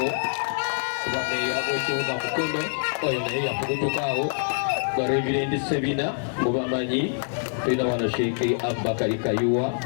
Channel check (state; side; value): silent; right; digital silence